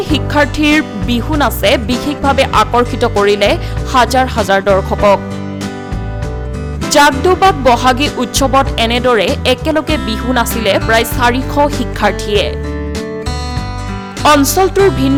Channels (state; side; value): identical; both; correlation 1.00